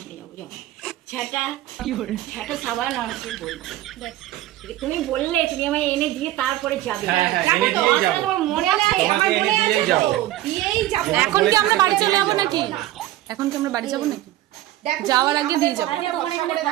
নিয়ে যাবো যাও। ঝাঁটা ঝাঁটা সাবান আর কি বলবো তুমি বললে তুমি আমায় এনে দিয়ে তারপরে যাবে। এনে দিয়েই যাবো, তোমার মনে আছে? তোমাকে এনে দিয়েই যাবো। দিয়েই যাবো। এখন কি আমরা বাড়ি চলে যাবো নাকি? এখন কি আমরা বাড়ি যাবো নাকি? যাওয়ার আগে দিয়ে যাবো।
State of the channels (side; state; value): left; quieter; 14.9 dB